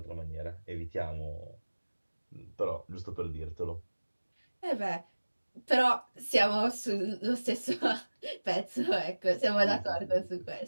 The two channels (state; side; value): inverted; both; correlation -1.00